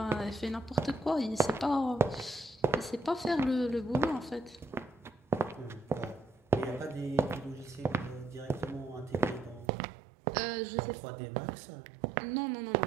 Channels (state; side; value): drops out; left; at 9.7 s